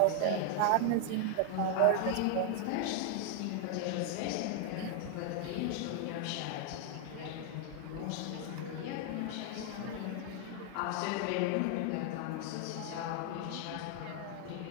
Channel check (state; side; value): different; both; correlation 0.00